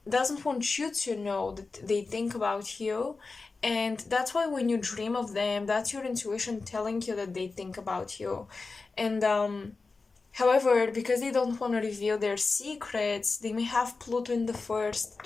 you to know that they think about you, and that's why when you dream of them, that's your intuition telling you that they think about you. And however, because they don't want to reveal their secrets, they may have Pluto in the 1st,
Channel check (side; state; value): right; quieter; 4.0 dB